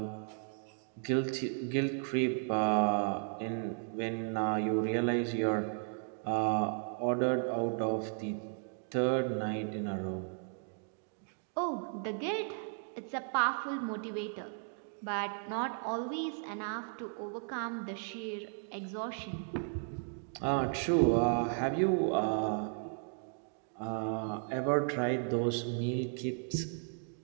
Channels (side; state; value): left; silent; 54 dB below the other